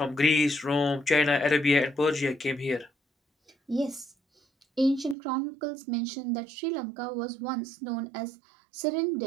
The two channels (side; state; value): left; drops out; at 5.2 s